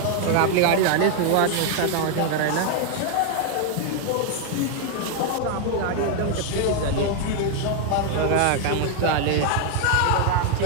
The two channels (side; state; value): both; different; correlation 0.00